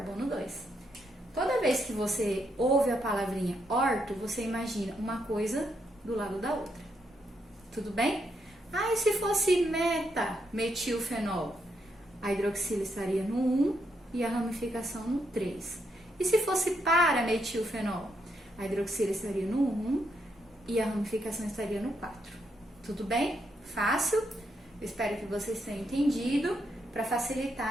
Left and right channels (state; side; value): normal; both; correlation 0.78